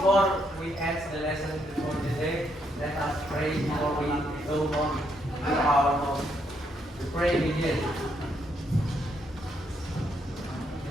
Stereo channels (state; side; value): normal; both; correlation 0.75